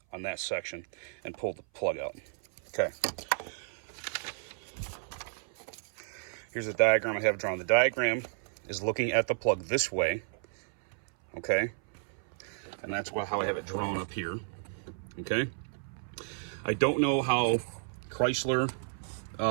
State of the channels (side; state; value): left; silent; 56 dB below the other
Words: on that section and pull the plug out. Okay. Here's the diagram I have drawn. The diagram is looking at the plug this way, okay? And that's how I have it drawn up here, okay? I don't know how Chrysler